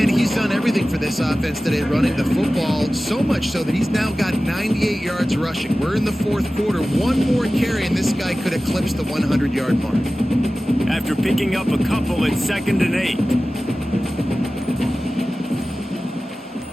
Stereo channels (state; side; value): normal; both; correlation 0.96